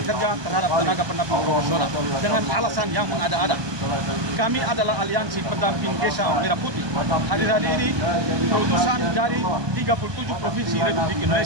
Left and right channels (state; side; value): late; left; 1.2 ms